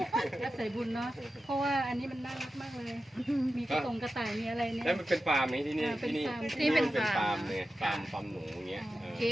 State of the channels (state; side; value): normal; both; correlation 0.92